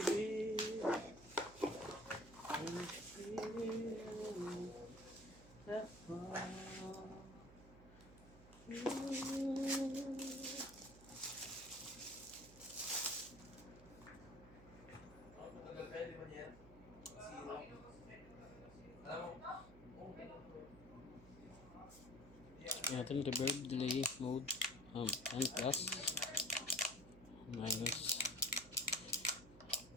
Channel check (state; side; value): noise; right; hum, 19 dB below the sound